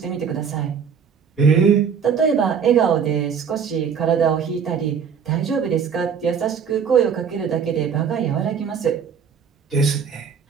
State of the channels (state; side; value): quieter; left; 6.9 dB